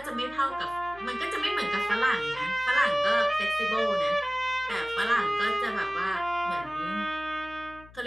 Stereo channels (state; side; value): noise; left; hum, 22 dB below the sound